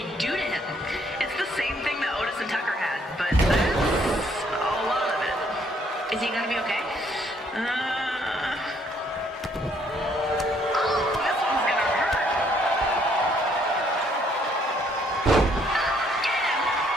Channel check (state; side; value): normal; both; correlation 0.67